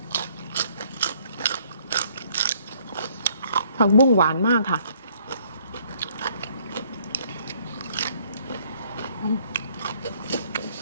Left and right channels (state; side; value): inverted; both; correlation -0.63